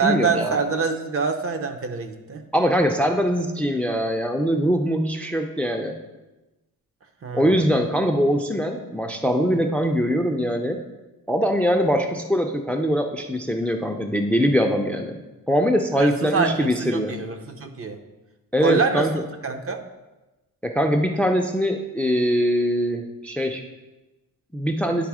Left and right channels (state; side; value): normal; both; correlation 0.65